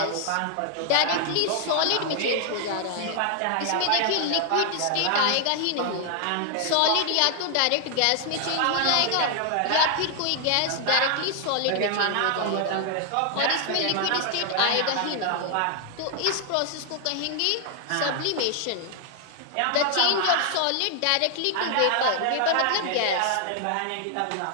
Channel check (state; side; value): different; both; correlation 0.00